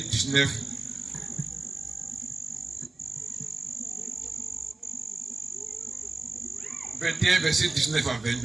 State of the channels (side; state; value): left; quieter; 3.2 dB